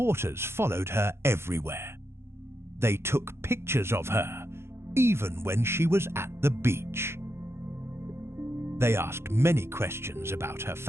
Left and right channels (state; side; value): late; left; 0.12 ms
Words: followed her everywhere. They took pictures of her, even when she was at the beach. They asked many questions about her